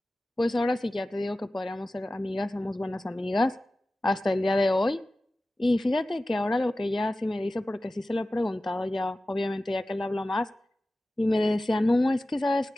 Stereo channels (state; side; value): normal; both; correlation 0.96